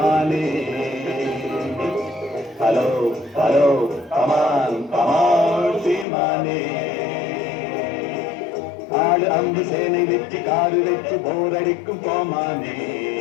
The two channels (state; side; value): drops out; right; at 6.1 s